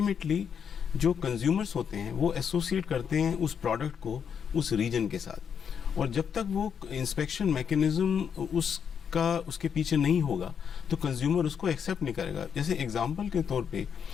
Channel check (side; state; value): right; quieter; 7.4 dB